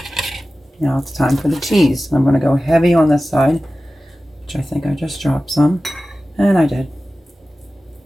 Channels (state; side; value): normal; both; correlation 0.95